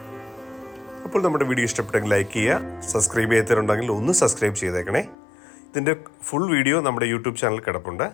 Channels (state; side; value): drops out; right; at 5.2 s